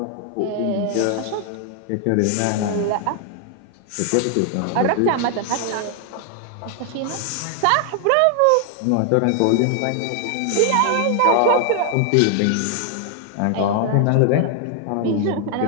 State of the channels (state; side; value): different; both; correlation 0.00